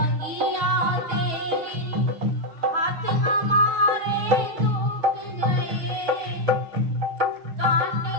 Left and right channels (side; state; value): left; late; 6.2 ms